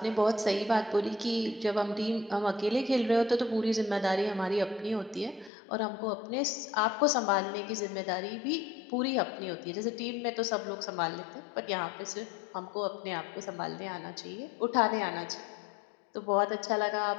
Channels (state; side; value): drops out; right; at 5.5 s